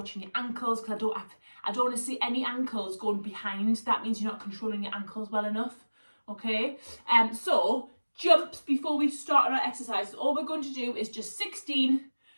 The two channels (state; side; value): inverted; both; correlation -1.00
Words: your ankles, because I don't want to see any ankles going behind. That means you're not controlling your ankles well enough, okay? So jumps before we start on our exercises. All we're going to do is just 16